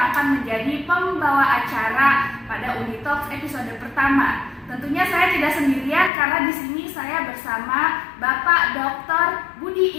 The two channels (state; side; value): drops out; right; at 6.1 s